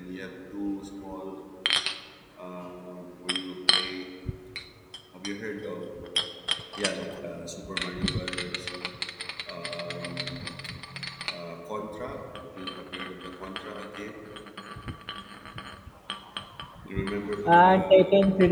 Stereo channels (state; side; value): identical; both; correlation 1.00